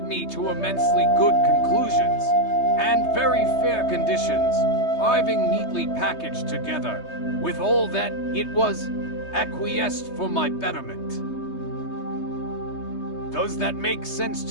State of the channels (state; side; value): late; right; 3.2 ms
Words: me to immensely good conclusions, and very fair conditions, arriving neatly packaged together, with all that it was acquiesced for my betterment. Does that make sense